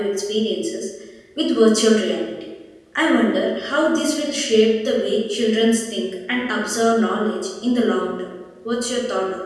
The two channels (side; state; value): both; identical; correlation 1.00